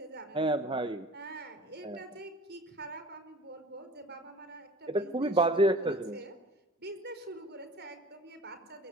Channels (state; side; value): normal; both; correlation 0.43